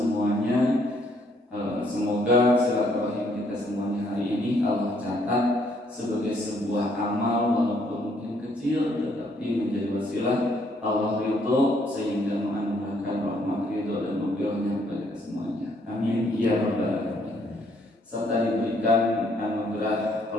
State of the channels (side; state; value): both; normal; correlation 0.68